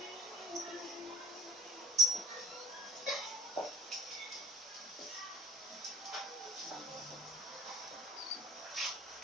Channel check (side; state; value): both; normal; correlation 0.42